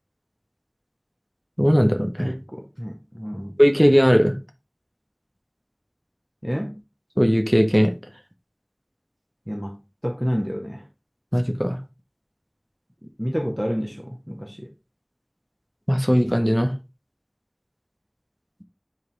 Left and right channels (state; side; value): identical; both; correlation 1.00